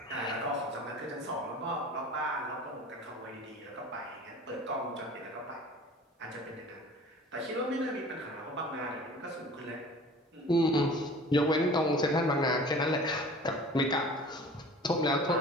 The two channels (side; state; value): both; normal; correlation 0.43